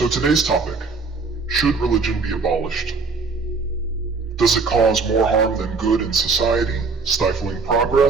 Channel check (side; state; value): left; quieter; 4.4 dB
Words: today's topic: should religion be abolished? Does it cause more harm than good in society, stifling